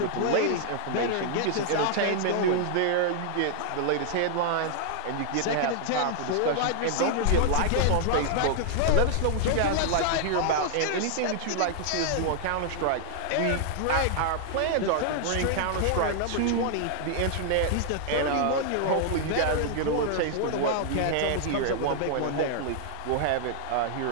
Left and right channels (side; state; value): both; different; correlation 0.00